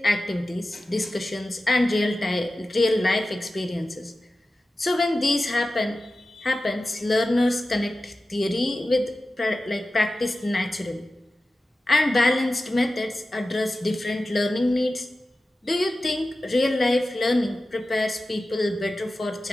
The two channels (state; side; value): normal; both; correlation 0.94